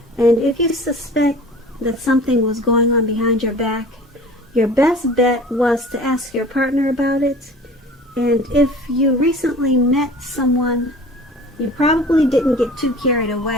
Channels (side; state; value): both; normal; correlation 0.43